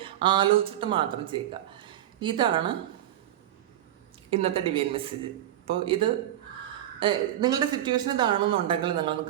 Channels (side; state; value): left; quieter; 12.4 dB